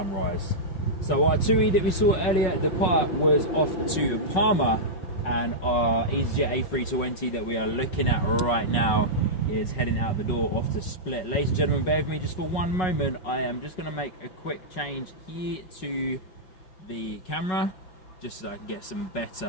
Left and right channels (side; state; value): right; late; 5.4 ms